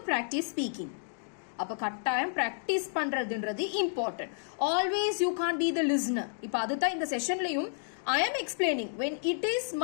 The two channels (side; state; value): right; silent; digital silence